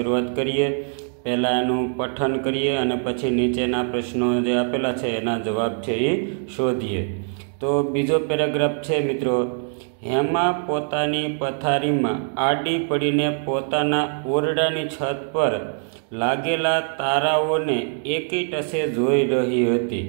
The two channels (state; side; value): silent; left; 58 dB below the other